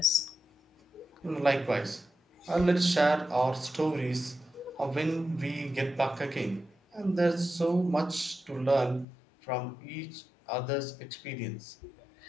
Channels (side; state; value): right; drops out; at 9.1 s